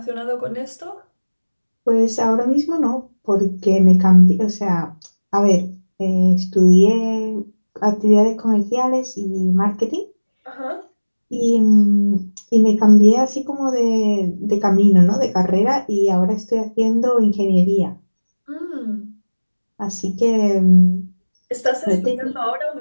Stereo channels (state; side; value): inverted; both; correlation -1.00